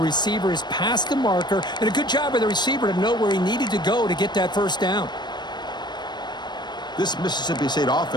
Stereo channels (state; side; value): late; right; 0.21 ms